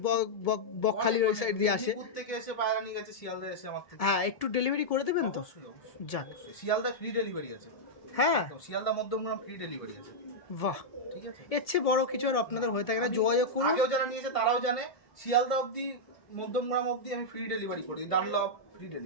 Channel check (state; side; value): late; right; 1.7 ms